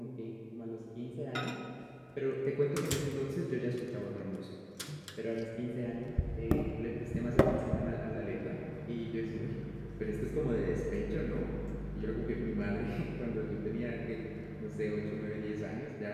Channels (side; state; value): both; identical; correlation 1.00